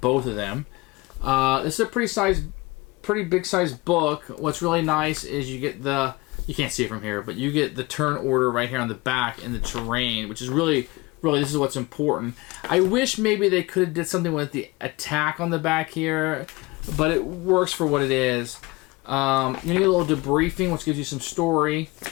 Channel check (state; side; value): quieter; right; 23.3 dB